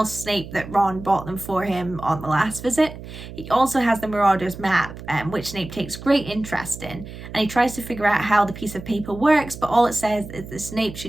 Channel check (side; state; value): right; noise; hum, 13 dB below the sound